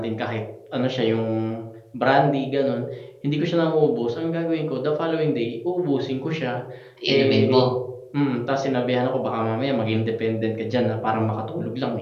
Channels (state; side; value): identical; both; correlation 1.00